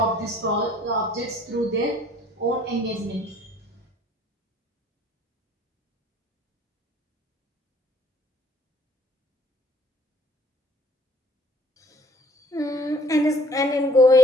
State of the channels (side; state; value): both; normal; correlation 0.57